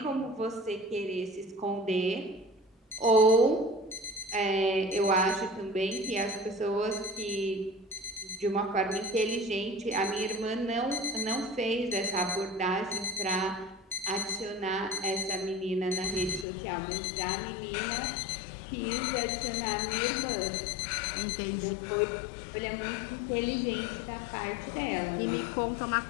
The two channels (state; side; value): drops out; right; at 16.4 s